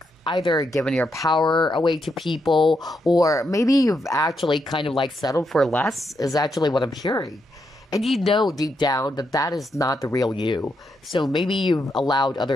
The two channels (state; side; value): normal; both; correlation 0.81